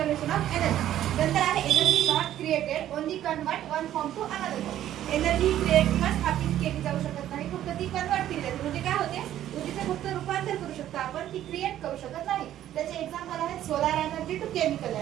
ऑफ एनर्जी. नंतर आहे energy not created, only convert one form to another form. Energy create किंवा स्थापित केली जाऊ शकत नाही, फक्त ती कन्वर्ट केली जाते. म्हणजे काय होते, ऊर्जेचे फक्त रूपांतर करू शकतो आपण, ती क्रिएट करू शकत नाही. त्याचे एक्झाम्पल आहेत solar energy to chemical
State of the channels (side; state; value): left; quieter; 12.1 dB